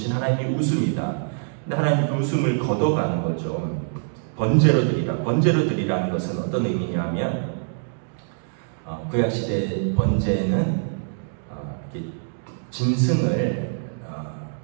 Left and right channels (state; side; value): silent; left; digital silence